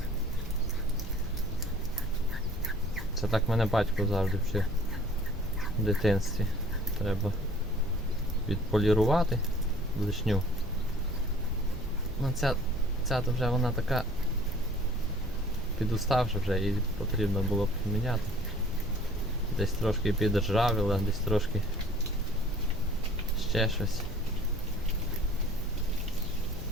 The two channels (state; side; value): normal; both; correlation 0.51